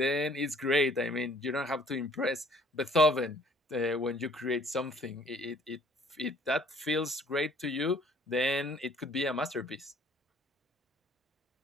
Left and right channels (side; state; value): both; normal; correlation 0.57